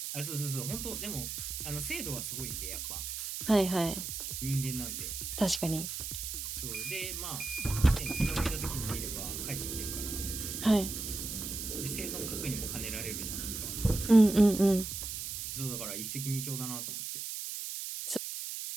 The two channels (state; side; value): noise; right; hiss, 5 dB below the sound